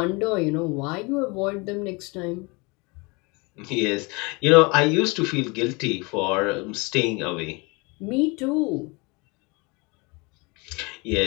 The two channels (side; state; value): right; quieter; 27.7 dB